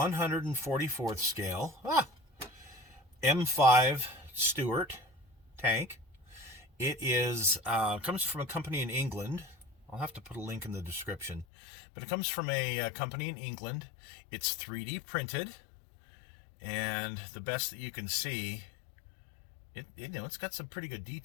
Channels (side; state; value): right; drops out; at 11.5 s